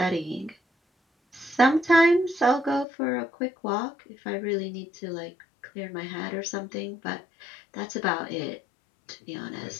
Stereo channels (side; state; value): right; drops out; at 2.9 s